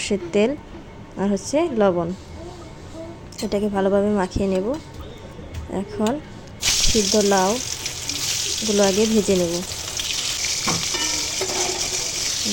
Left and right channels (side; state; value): both; identical; correlation 1.00